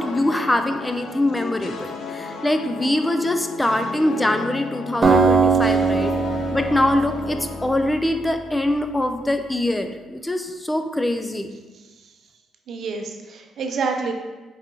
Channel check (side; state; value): both; normal; correlation 0.82